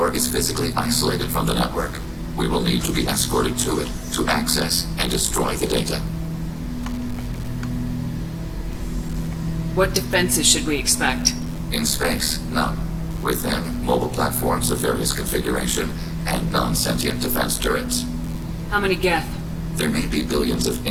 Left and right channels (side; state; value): both; identical; correlation 1.00